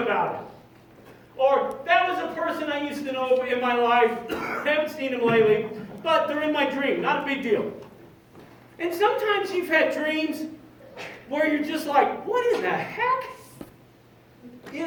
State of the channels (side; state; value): both; identical; correlation 1.00